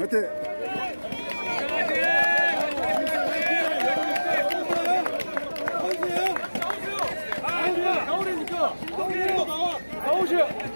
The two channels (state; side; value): inverted; both; correlation -1.00